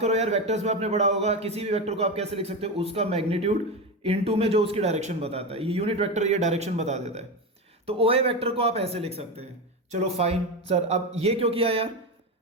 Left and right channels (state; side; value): normal; both; correlation 0.17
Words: यार, वेक्टर्स में आपने पढ़ा होगा, किसी भी वेक्टर को आप कैसे लिख सकते हो? उसका मैग्नीट्यूड इनटू में जो उसकी डायरेक्शन बताता है, ये यूनिट वेक्टर ये डायरेक्शन बता देता है। तो ओ ए वेक्टर को आप ऐसे लिख सकते हैं। चलो फाइन सर, अब ये क्यों किया यार?